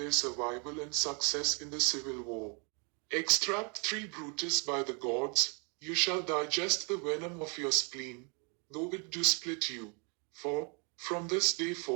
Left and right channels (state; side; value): quieter; left; 35.3 dB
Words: survival and success in the civil war. Extract 3. Brutus, by the gods, you shall digest the venom of your spleen, though it do split you. For, from this day